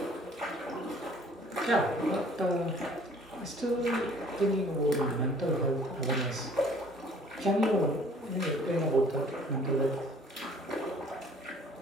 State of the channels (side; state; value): both; normal; correlation 0.55